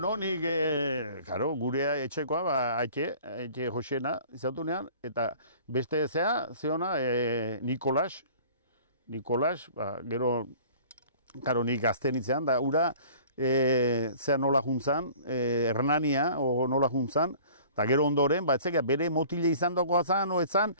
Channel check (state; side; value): inverted; both; correlation -0.48